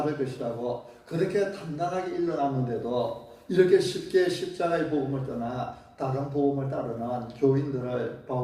것이라고 그렇게 단단하게 일러놨는데도 이렇게 쉽게 십자가의 복음을 떠나 다른 복음을 따르는 교인들을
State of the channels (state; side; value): identical; both; correlation 1.00